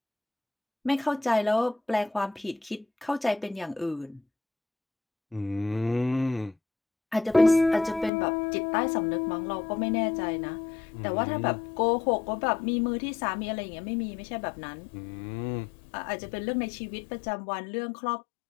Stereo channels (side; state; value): right; drops out; at 8.1 s